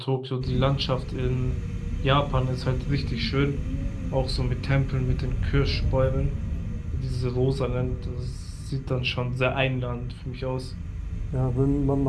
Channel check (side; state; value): both; identical; correlation 1.00